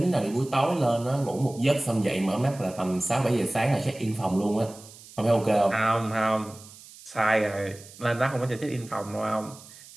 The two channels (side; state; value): right; noise; hiss, 19 dB below the sound